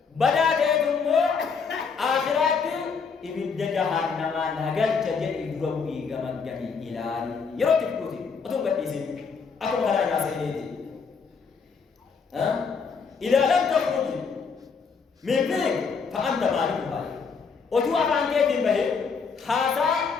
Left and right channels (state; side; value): quieter; right; 5.5 dB